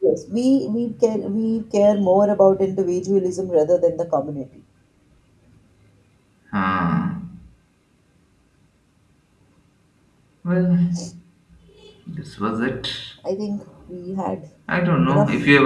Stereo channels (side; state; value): both; identical; correlation 1.00